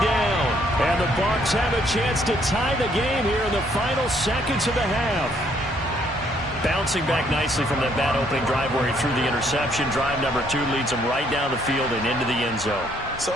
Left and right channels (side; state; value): both; normal; correlation 0.67